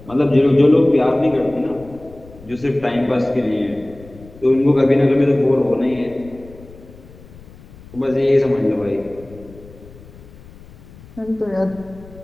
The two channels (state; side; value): noise; left; rumble, 21 dB below the sound